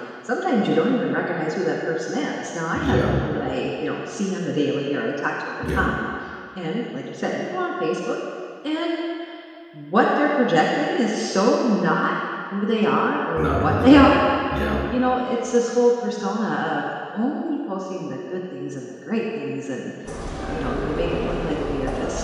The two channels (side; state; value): both; identical; correlation 1.00